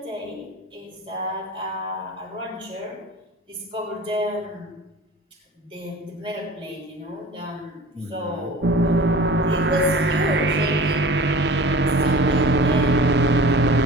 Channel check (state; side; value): normal; both; correlation 0.40